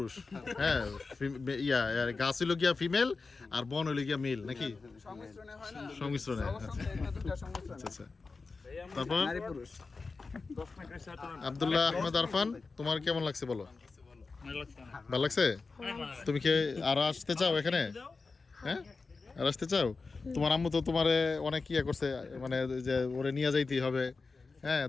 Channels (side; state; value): right; quieter; 4.2 dB